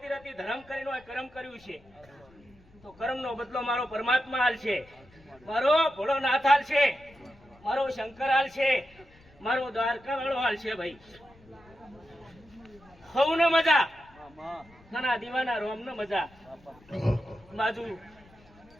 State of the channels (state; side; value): noise; left; rumble, 27 dB below the sound